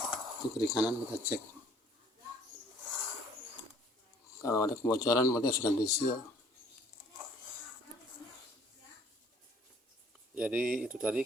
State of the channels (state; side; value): normal; both; correlation 0.57